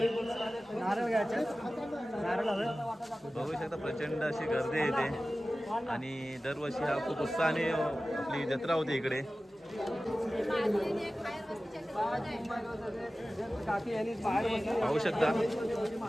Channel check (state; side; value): normal; both; correlation 0.96